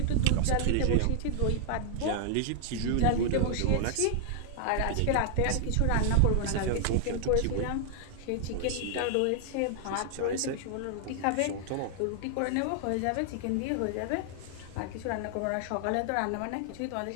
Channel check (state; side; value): different; both; correlation 0.00